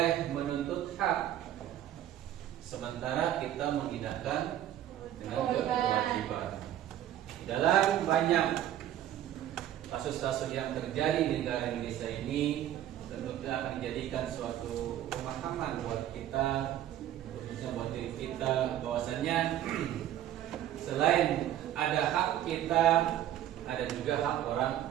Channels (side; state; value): left; quieter; 11.9 dB